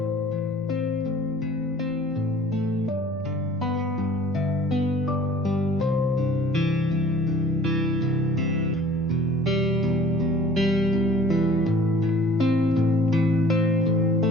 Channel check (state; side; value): normal; both; correlation 0.50